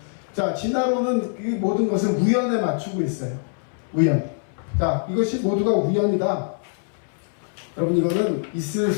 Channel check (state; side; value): silent; right; 62 dB below the other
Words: 자, 진화론은 이 모든 것을 우연에 맞추고 있어요. 우연. 자, 이것이 모두가 우연이다. 여러분, 이거는 있을